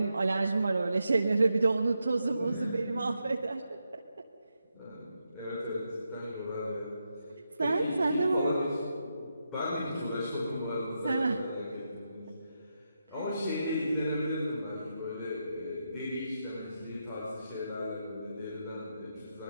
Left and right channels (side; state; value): both; inverted; correlation -0.85